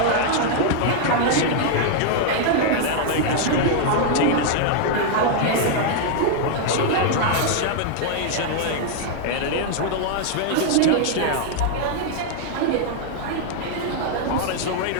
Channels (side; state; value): both; different; correlation 0.00